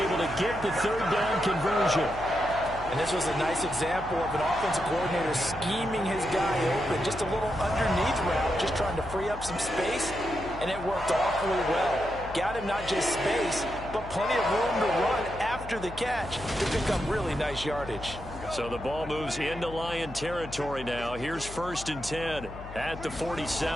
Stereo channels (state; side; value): noise; left; hum, 13 dB below the sound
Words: able to get the 3rd down conversion. And this was a nice example of an offensive coordinator scheming his guy open. Just a little underneath route, just trying to free up some space, and it worked awfully well. Got him not just space, but plenty of room to run after the catch to pick up really nice yardage. So the ball moves into Lion territory now. Here's 1st and 10 at the